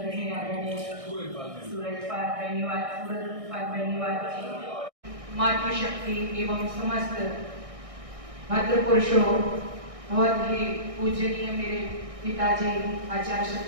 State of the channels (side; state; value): left; late; 1.6 ms